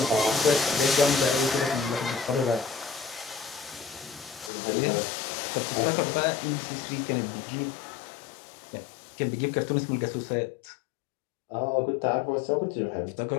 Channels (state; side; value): drops out; right; at 4.5 s